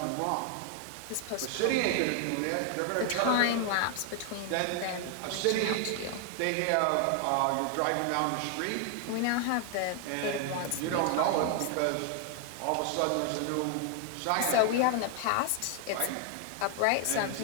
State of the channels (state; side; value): different; both; correlation 0.00